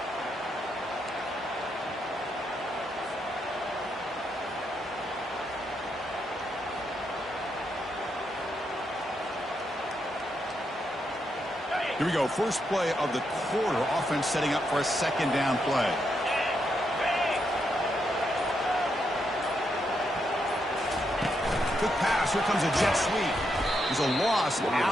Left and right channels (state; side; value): normal; both; correlation 0.81